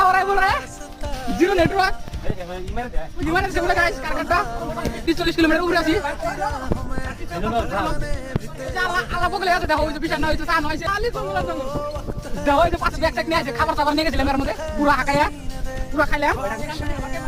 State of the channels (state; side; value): identical; both; correlation 1.00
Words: हो रहा है बोल रहा है जीरो नेटवर्क इमारत से बोला गाइस कारखाना 30-40 किलोमीटर উড়ে আছি আলা বগলে আছে দেখো ওই যে বিশাল না হইছে সান হইছে খালি জঙ্গল আর জঙ্গল দেখো ওই যে পাঁচ ব্যাগ ট্যাগ নিয়ে আছে খাবার দাবার নিয়ে গেছিলাম এর মধ্যে পুরো হাকায়া পুরো খাইলাম